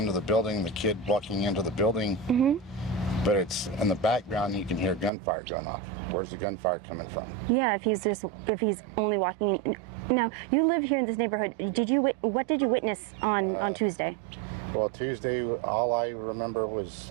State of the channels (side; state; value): left; drops out; at 5.1 s